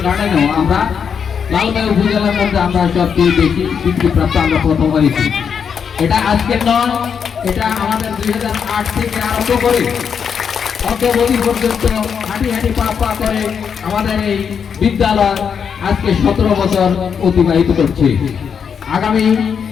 গার্ডেনেও আমরা লালমাই উপজেলার মধ্যে আমরা সবচেয়ে বেশি স্বীকৃতিপ্রাপ্ত আমরা প্রথম হয়েছি। এটা আজকের নয়, এটা আমাদের 2008 থেকে আরম্ভ করে অদ্যাবধি পর্যন্ত হাঁটি হাঁটি পা পা করে আমাদের এই বিদ্যালয় আজকে 17 বছর অতিবাহিত করছে। আগামী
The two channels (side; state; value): right; quieter; 7.0 dB